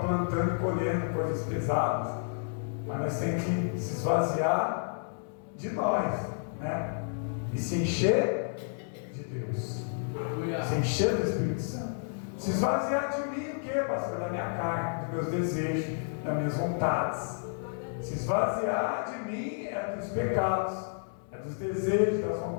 e colhendo coisas pesadas, mas nós temos que se esvaziar de nós, né? E se encher de Deus, se encher do Espírito Santo. Se esvaziar de mim o que, pastor? Da minha carne, dos meus desejos, das minhas vontades. Se esvaziar de mim é dos pecados, é dos desejos, das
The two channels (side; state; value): right; silent; digital silence